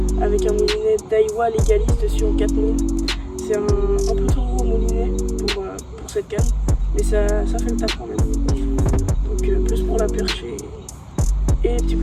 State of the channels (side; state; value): both; identical; correlation 1.00